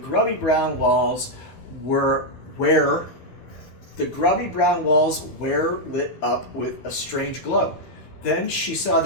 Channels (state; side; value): late; right; 13 ms